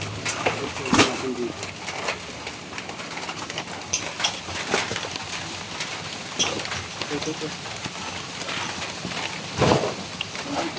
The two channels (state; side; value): identical; both; correlation 1.00